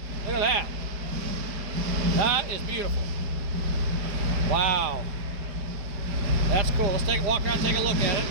Look at that. That is beautiful. Wow. That's cool. Let's take a walk around and take a look at it.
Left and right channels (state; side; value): late; left; 4.9 ms